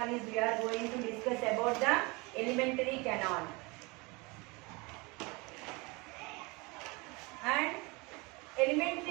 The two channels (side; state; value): left; quieter; 26.5 dB